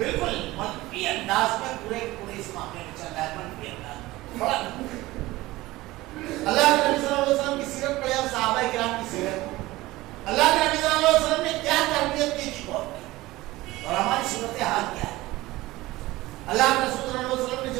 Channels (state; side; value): quieter; left; 18.6 dB